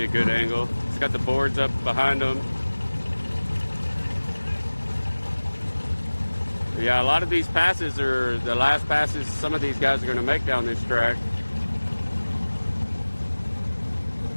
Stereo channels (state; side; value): inverted; both; correlation -1.00